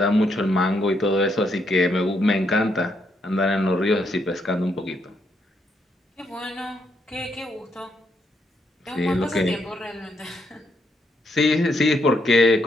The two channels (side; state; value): both; normal; correlation 0.77